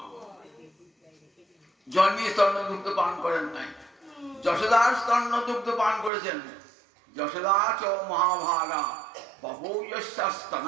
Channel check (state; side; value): drops out; left; at 6.1 s